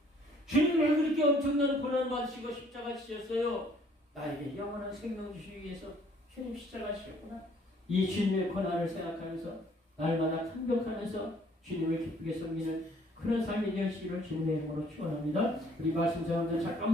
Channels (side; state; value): both; normal; correlation 0.60